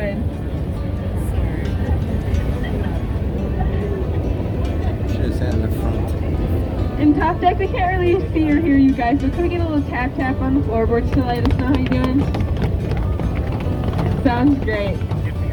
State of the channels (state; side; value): identical; both; correlation 1.00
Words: Should have sat in the front. In top deck, we can't really see or hear you guys, but can we get a little tap-tap on the floorboards to let us know how you're doing? Sounds great.